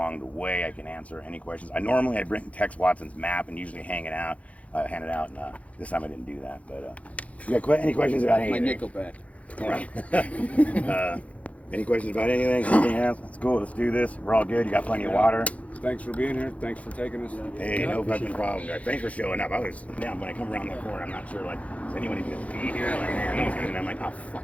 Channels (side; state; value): right; late; 0.066 ms